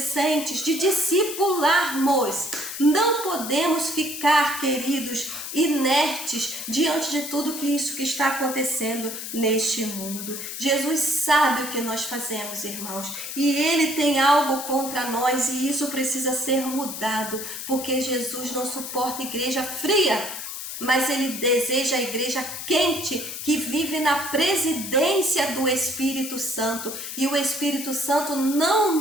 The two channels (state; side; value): noise; left; hiss, 7 dB below the sound